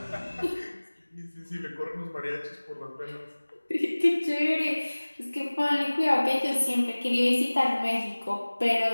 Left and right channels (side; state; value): both; inverted; correlation -1.00